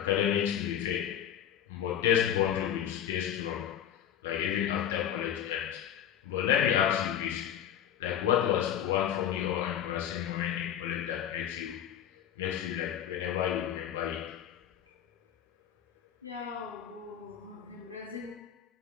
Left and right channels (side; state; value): right; quieter; 10.0 dB